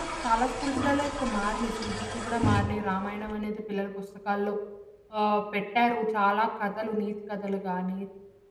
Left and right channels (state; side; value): identical; both; correlation 1.00